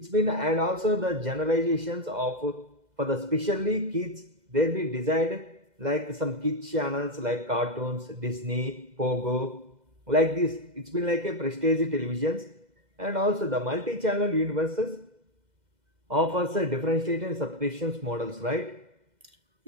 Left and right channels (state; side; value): late; left; 2.0 ms